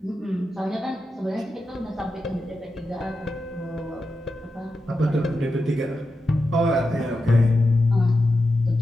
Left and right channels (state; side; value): normal; both; correlation 0.89